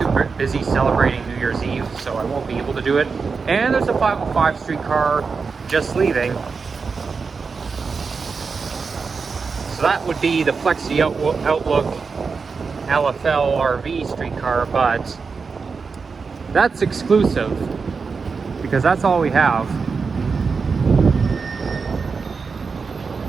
busy celebrating New Year's Eve, so I won't be able to do it. And there's a 505 streetcar just leaving. So that would be the Flexi Outlook LFL RV streetcar, but that's exclusive because that's all we have.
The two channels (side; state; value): left; quieter; 5.0 dB